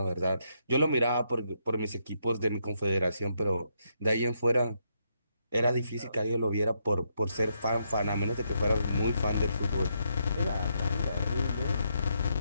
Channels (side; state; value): both; inverted; correlation -0.78